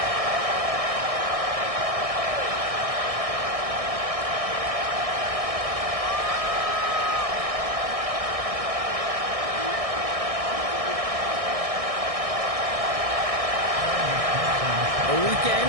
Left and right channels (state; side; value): late; left; 1.6 ms